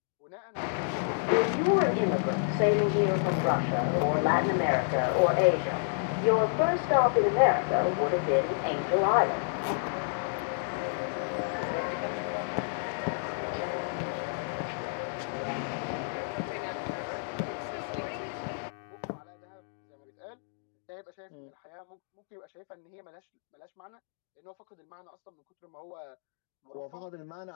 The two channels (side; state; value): right; silent; digital silence